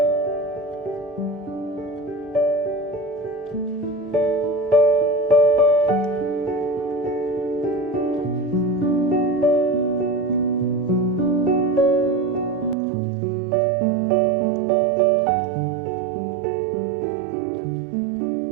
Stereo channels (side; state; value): left; drops out; at 12.8 s